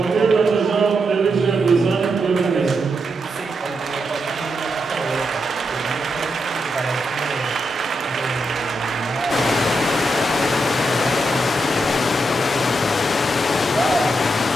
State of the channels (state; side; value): normal; both; correlation 0.83